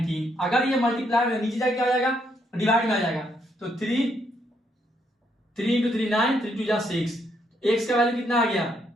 अगर ये मल्टीप्लाई में नीचे जाके क्या हो जाएगा डिवाइड में आ जाएगा, तो 3 इंटू 3 9, 3 2 6, x का वैल्यू कितना आ गया,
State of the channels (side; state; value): both; normal; correlation 0.74